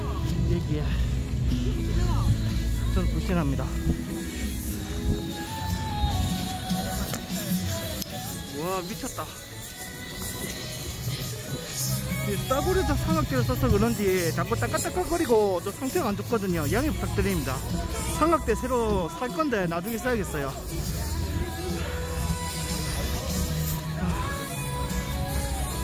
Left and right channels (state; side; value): identical; both; correlation 1.00